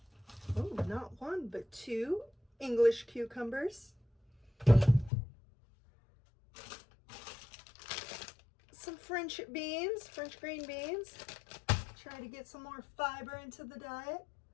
oh, not one, but two English cucumbers. Some French beans, French green beans. Try to get some more fiber into the diet.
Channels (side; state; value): right; drops out; at 5.1 s